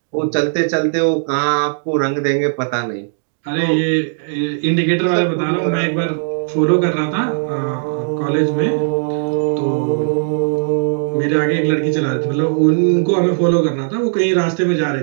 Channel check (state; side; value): silent; left; digital silence